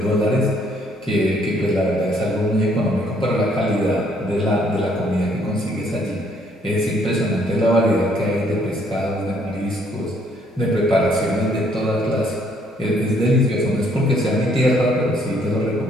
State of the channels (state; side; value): normal; both; correlation 0.66